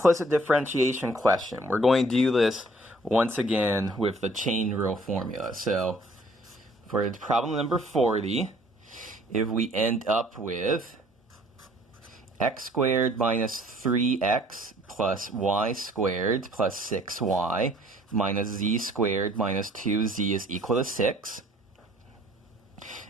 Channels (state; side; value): normal; both; correlation 0.57